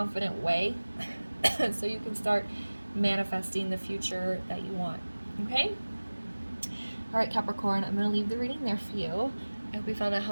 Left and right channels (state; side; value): inverted; both; correlation -1.00